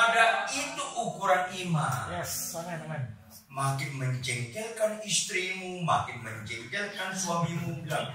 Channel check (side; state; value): both; identical; correlation 1.00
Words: itu ukuran iman. Yes, amin. Makin menjengkelkan istrimu, makin menjengkelkan suamimu, bilang,